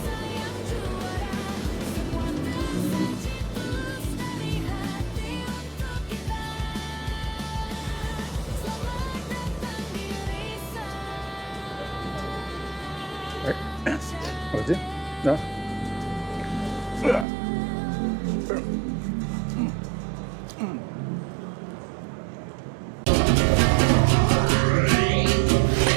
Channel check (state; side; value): drops out; left; at 17.2 s